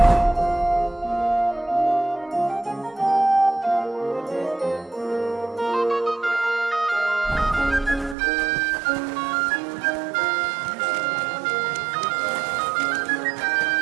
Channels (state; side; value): drops out; left; at 8.2 s